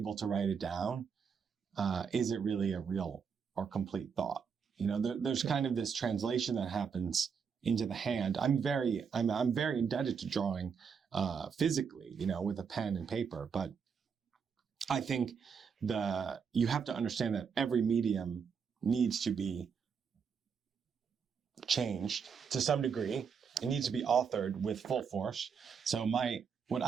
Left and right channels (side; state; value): left; quieter; 6.3 dB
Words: to write it down, is it really a real or complete thought? There's kind of this translation that happens into the hand. I'm very indebted to drawing physically, with a pen and paper. But I think you have to understand that every medium needs to be changed to some degree. It needs to be authored with full force. So what